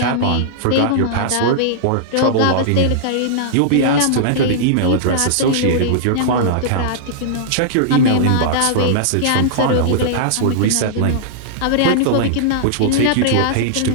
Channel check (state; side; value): different; both; correlation -0.01